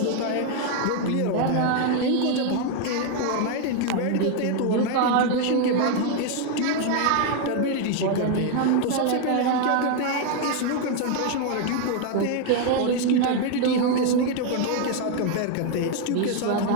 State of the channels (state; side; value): different; both; correlation 0.01